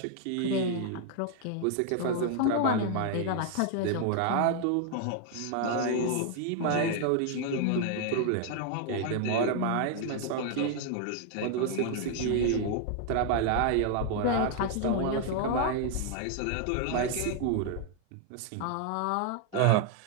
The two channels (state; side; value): different; both; correlation 0.00